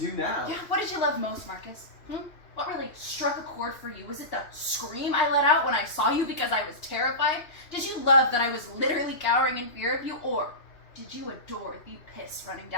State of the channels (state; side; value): late; right; 2.9 ms